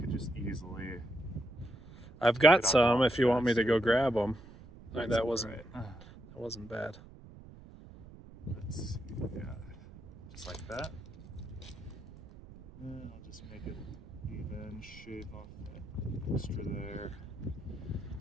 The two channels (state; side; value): noise; right; rumble, 18 dB below the sound